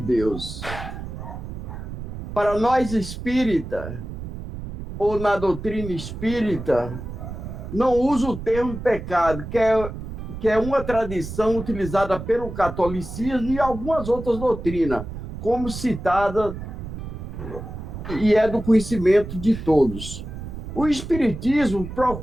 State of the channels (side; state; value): right; noise; rumble, 9 dB below the sound